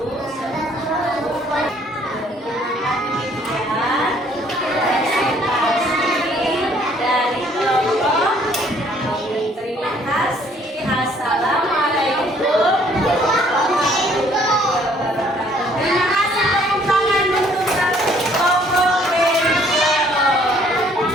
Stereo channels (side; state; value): both; normal; correlation 0.61